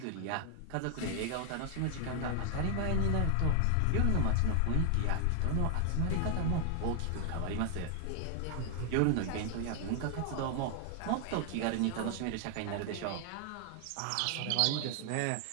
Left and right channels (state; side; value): different; both; correlation 0.00